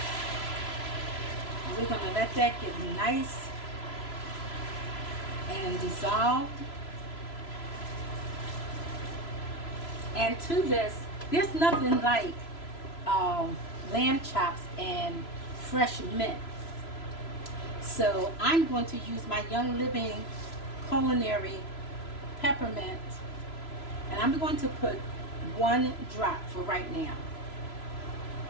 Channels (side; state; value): right; late; 3.0 ms